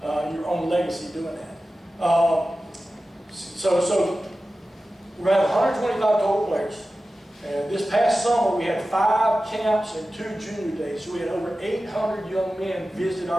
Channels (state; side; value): normal; both; correlation 0.95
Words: your own legacy doing that. So we're going to have 125 total players. And this past summer, we had 5 camps and 2 junior days. So we had over 800 young men visit